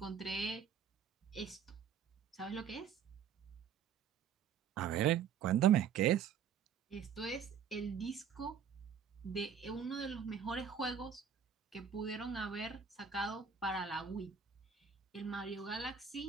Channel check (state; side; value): quieter; left; 7.4 dB